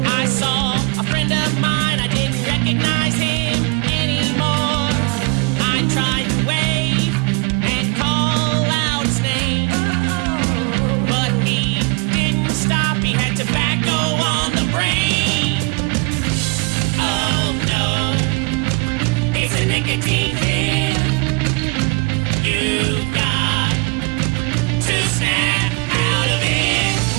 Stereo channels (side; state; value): left; quieter; 28.6 dB